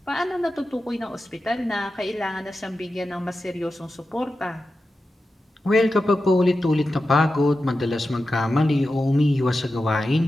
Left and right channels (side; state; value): both; normal; correlation 0.91